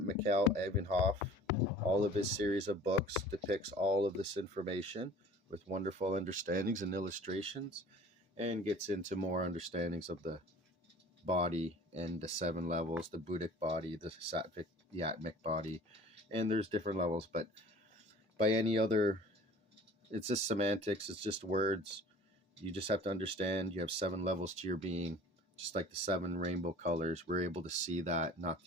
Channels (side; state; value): both; normal; correlation 0.47